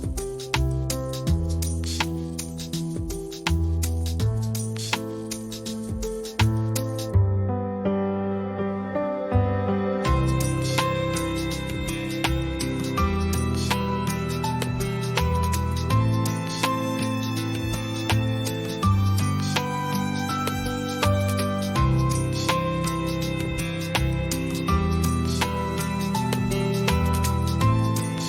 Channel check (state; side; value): identical; both; correlation 1.00